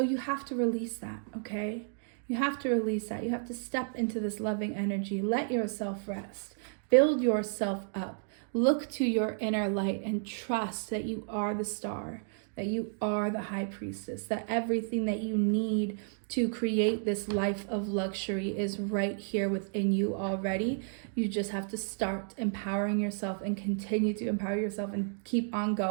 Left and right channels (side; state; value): left; silent; digital silence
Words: you have to release that, okay? You have to release that. You have to step into this loving energy. Let yourself rest. Build yourself up. Look to your inner light and trust that you are the star, that you are the high priestess, that everything that you need to create this life of luxury is right here within you already. You just have to start empowering yourself and continue to empower yourself and keep on